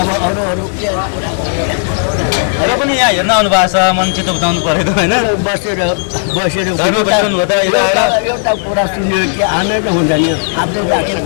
अरू के र पनि यहाँ हेर्न आउनुभएको छ मन चित्त बुझाउनु परेको होइन बसेर एउटा कुरा सुन्यो कि आनन्द हुन्छ नि आफूले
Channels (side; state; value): right; silent; digital silence